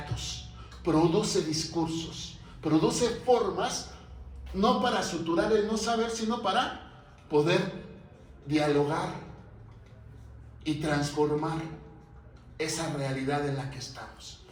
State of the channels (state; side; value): identical; both; correlation 1.00